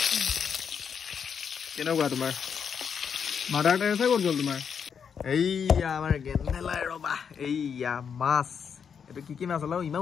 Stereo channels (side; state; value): right; quieter; 7.0 dB